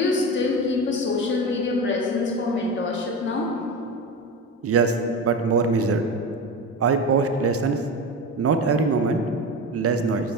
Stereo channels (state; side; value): normal; both; correlation 0.24